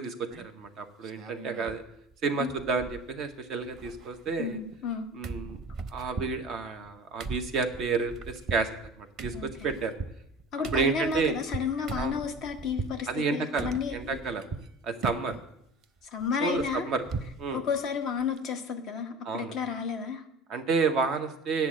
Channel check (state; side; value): normal; both; correlation 0.39